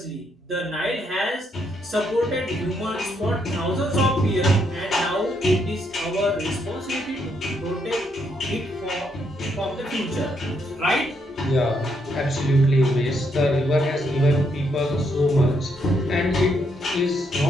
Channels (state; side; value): normal; both; correlation 0.75